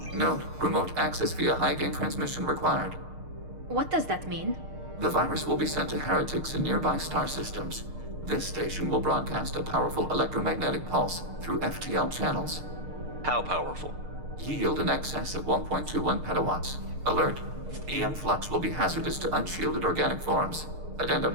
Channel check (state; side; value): late; left; 6.6 ms